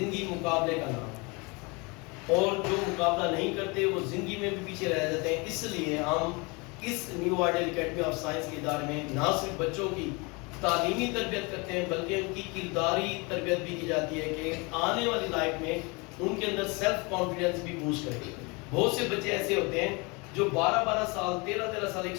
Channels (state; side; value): quieter; right; 28.4 dB